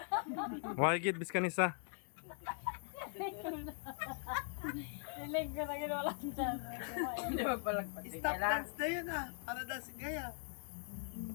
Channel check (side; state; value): right; silent; 50 dB below the other